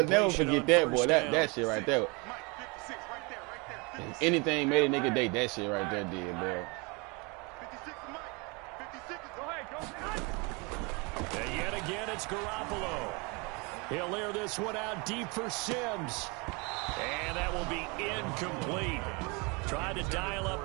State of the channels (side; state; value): left; quieter; 29.3 dB